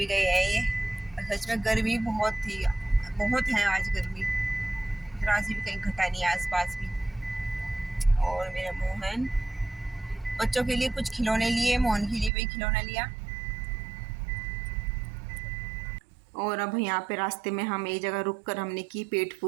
गए हैं ये। सच में गर्मी बहुत थी, बहुत है आज गर्मी, जरा सी भी कहीं घटा नहीं है आसपास भी। और मेरा मोहन बच्चों के लिए कुछ खिलौने लिए, मोहन के लिए भी खिलौना लिया। और अब यहाँ पे रास्ते में हम एक जगह रुक कर हमने की पेट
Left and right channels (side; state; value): left; drops out; at 12.3 s